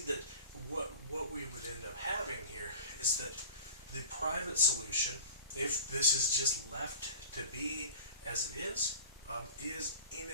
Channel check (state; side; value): inverted; both; correlation -0.37